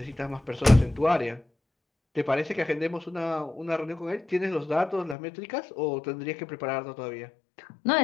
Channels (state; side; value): drops out; right; at 5.2 s